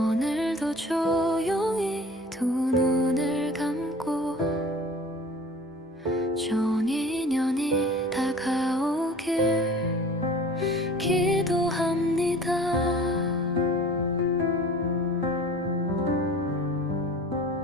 조용히 두 눈을 감고 좋은 인연이 다가오길 기도합니다.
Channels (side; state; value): both; normal; correlation 0.43